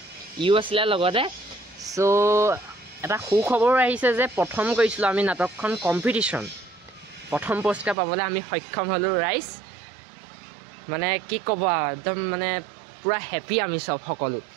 ইও আছিলে লগতে। চ' এটা সুখবৰ আহিছে যে প্ৰথম কৰিছিলোঁ আমি নাটকখন কম্পিটিশ্যন, প্ৰথম পুৰস্কাৰ পাবলৈ আমি সক্ষম হ'লোঁ। ৰাইজ মানে কি ক'ব আৰু, একদম মানে পূৰা হেপী আমি চব সকলো,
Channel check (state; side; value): drops out; left; at 8.0 s